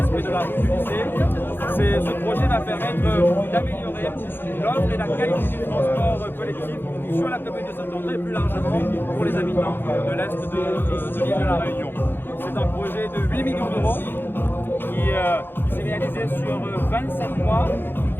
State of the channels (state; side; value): late; right; 0.10 ms